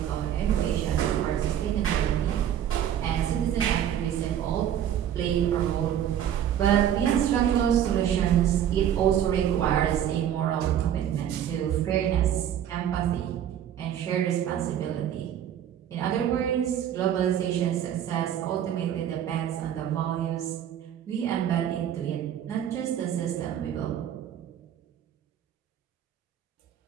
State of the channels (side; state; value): left; quieter; 10.2 dB